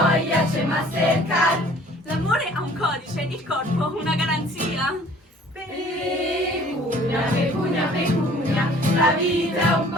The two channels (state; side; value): normal; both; correlation 0.53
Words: c'è Mastercard. L'amore ha un codice, il corpo una garanzia. Pecunia, pecunia, pecunia, la vita è un